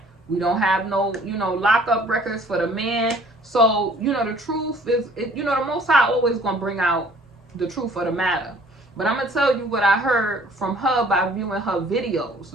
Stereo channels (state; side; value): normal; both; correlation 0.55